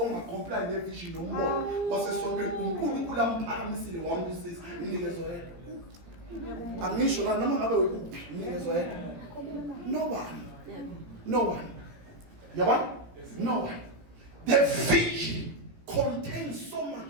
nevision nombono wasesontweni uNkulunkulu amphakamisile wambusisa inikezo yedwa. Angisho la noma ngabe ukuphi inikezo yedwa. No one. Yabona? No one. The vision contains so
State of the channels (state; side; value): late; left; 17 ms